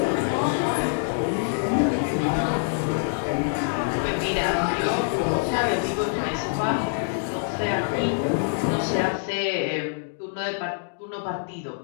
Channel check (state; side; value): silent; right; digital silence